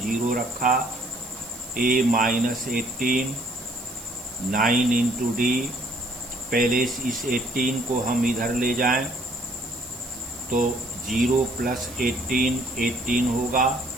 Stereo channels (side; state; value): right; noise; hiss, 16 dB below the sound